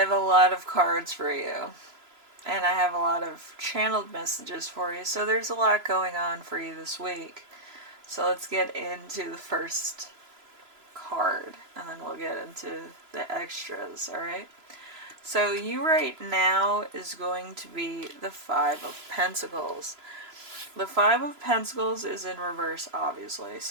a lot of cards for you, and I have a lot of channeled messages for you, so there's a lot going on for you this week. So let's get into the first card, and then we'll get into the extras, alright? So you right now is going to be the Five of Pentacles. The Five of Pentacles is in reverse, obviously.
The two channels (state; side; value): late; left; 3.0 ms